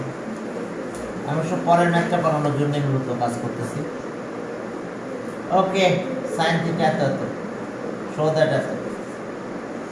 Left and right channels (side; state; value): both; identical; correlation 1.00